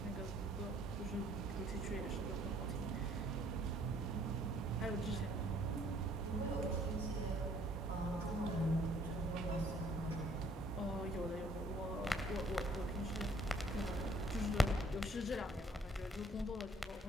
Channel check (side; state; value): both; normal; correlation 0.61